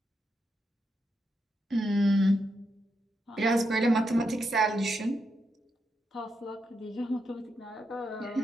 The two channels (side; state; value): both; normal; correlation 0.83